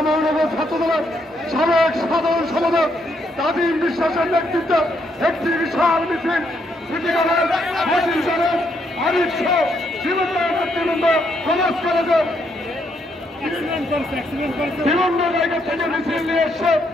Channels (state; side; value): normal; both; correlation 0.75